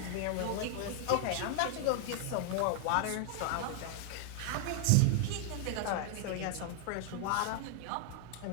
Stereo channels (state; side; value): different; both; correlation 0.00